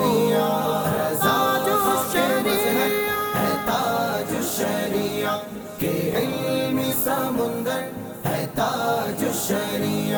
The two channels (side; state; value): both; identical; correlation 1.00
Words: رضا خاک مظہر ہے تاج الشریعہ کہ علمی سمندر ہے تاج